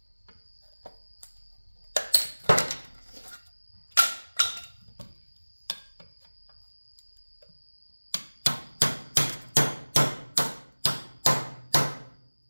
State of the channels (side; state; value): both; inverted; correlation -1.00